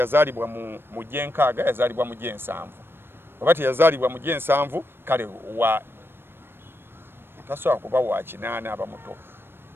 mu gyenkaaga yazaalibwa mu gyensanvu bwaba teyazaalibwa mu gyensanvu kale tasobola kuba wa kinaana abamuto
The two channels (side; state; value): left; late; 0.10 ms